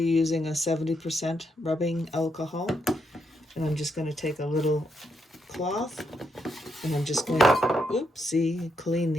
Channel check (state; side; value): normal; both; correlation 0.79